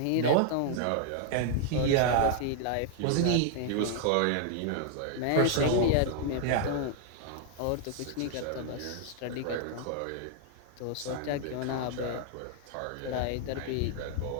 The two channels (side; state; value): both; different; correlation 0.00